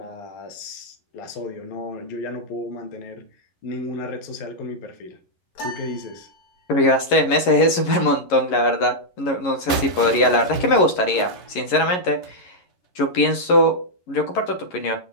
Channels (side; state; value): right; late; 11 ms